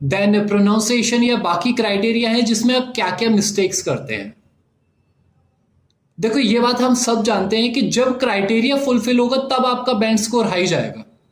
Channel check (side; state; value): both; identical; correlation 1.00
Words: देन प्रोनाउंसिएशन या बाकी क्राइटेरिया है जिसमें आप क्या क्या मिस्टेक्स करते हैं। देखो, ये बात हम सब जानते हैं कि जब क्राइटेरिया फुलफिल होगा तब आपका बैंड स्कोर हाई जाएगा।